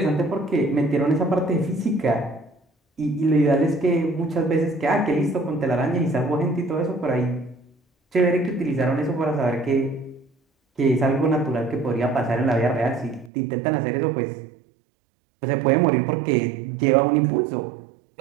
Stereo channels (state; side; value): drops out; left; at 13.3 s